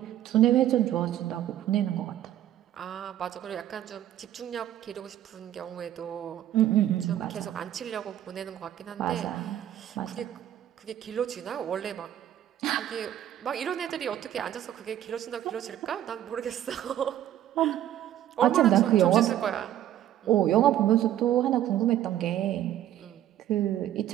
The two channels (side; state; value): left; quieter; 11.9 dB